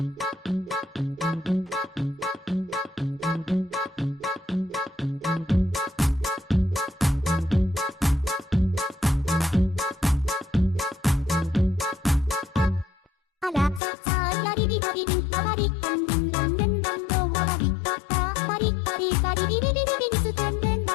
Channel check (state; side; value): drops out; right; at 13.8 s